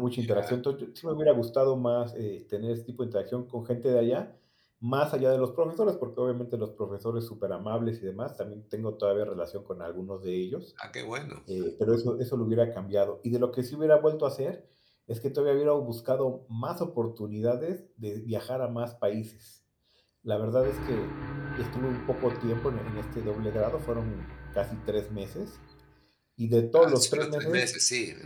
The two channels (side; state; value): both; identical; correlation 1.00